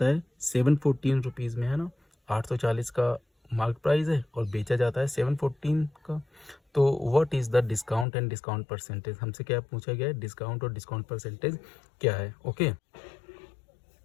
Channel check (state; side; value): drops out; right; at 8.1 s